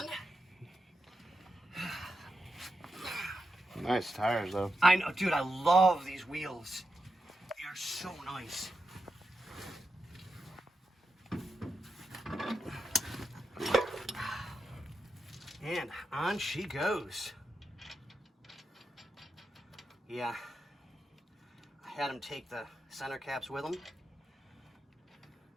Nice tires, though. I know, dude, I love these wheels. They are so nice. And on she goes. Yeah. I had him take the center caps with him.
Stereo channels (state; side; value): normal; both; correlation 0.88